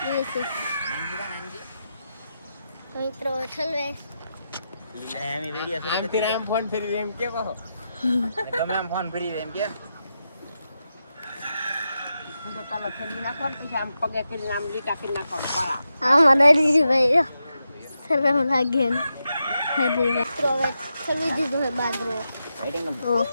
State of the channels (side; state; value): both; inverted; correlation -0.87